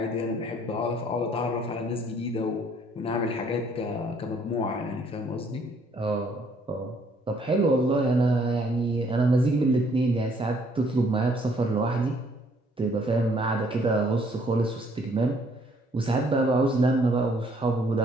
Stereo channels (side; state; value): both; normal; correlation 0.64